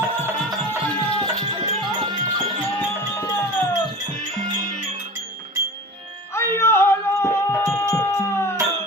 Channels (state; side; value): normal; both; correlation 0.35